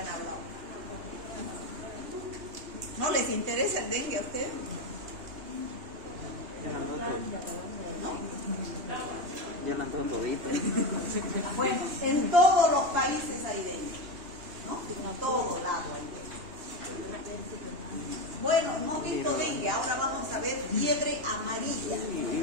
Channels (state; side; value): late; left; 2.8 ms